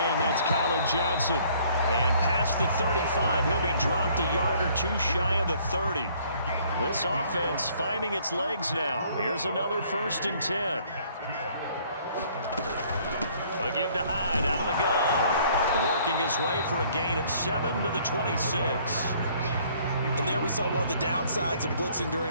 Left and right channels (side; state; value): both; inverted; correlation -0.60